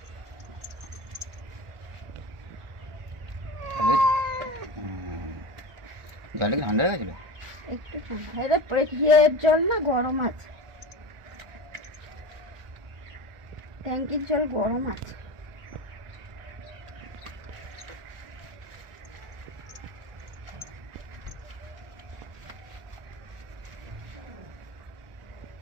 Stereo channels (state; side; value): late; left; 1.4 ms